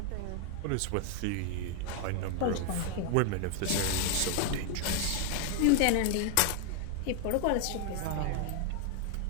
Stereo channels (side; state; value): both; different; correlation 0.01